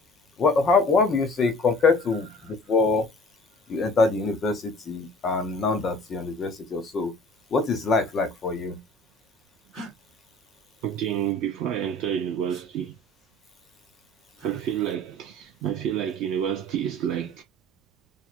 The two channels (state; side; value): normal; both; correlation 0.47